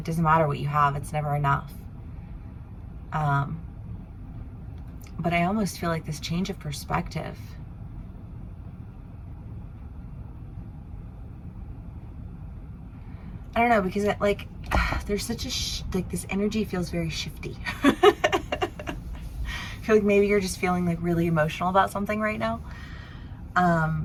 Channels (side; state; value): both; identical; correlation 1.00